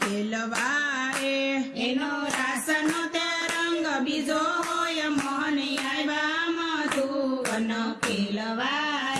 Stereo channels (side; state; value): both; identical; correlation 1.00